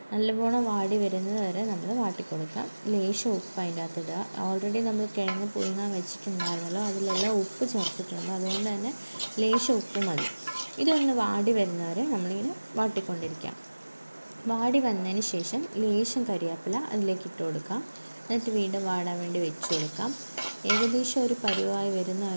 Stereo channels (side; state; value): both; inverted; correlation -1.00